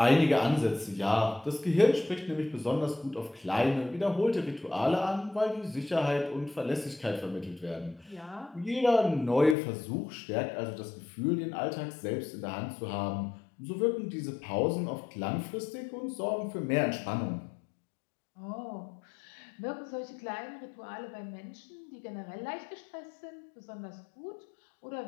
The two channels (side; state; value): right; drops out; at 9.6 s